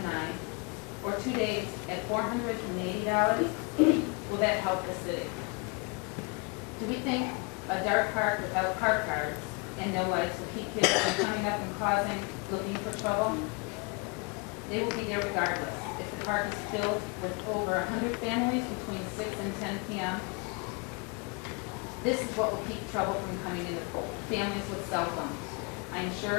or 2 days at $480, will that help the city? Do we think a dark park without park guards and no lights will keep kids from coming up and looking for trouble? They will be there regardless. If the park is filled with over 100 families between 6 and 10 p.m., this is what will keep trouble from coming in the pool. Families with cell phones. I am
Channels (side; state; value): right; quieter; 30.6 dB